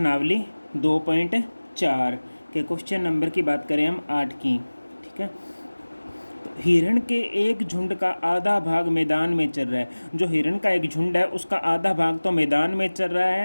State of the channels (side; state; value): both; inverted; correlation -1.00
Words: 2.4 के क्वेश्चन नंबर की बात करें हम 8 की। ठीक है, तो हिरण के एक झुंड का आधा भाग मैदान में चल रहा है। जो हिरण का एक झुंड है उसका आधा भाग तो मैदान में चल रहा